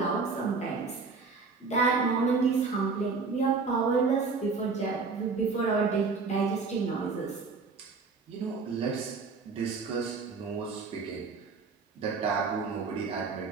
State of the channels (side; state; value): left; quieter; 4.6 dB